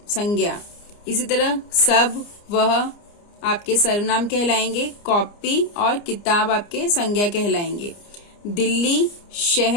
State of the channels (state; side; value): late; right; 29 ms